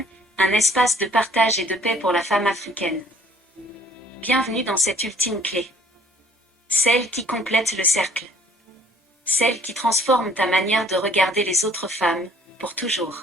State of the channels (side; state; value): both; normal; correlation 0.58